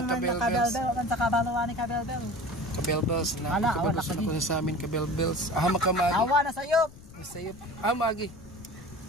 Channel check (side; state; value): left; noise; rumble, 20 dB below the sound